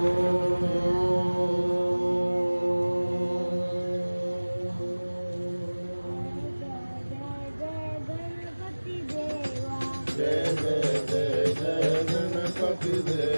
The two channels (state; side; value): inverted; both; correlation -1.00